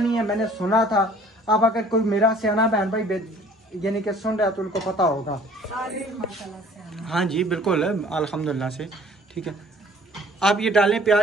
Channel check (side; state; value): both; normal; correlation 0.53